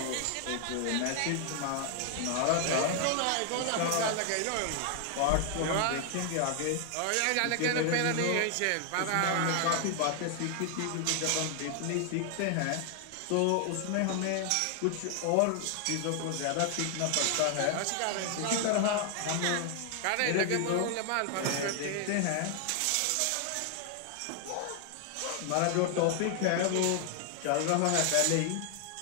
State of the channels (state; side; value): different; both; correlation 0.00